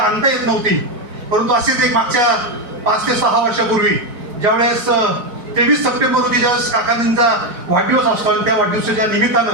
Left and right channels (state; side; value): late; left; 4.5 ms